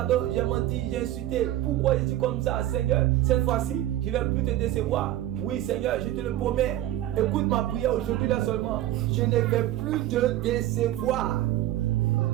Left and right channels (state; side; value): quieter; left; 13.8 dB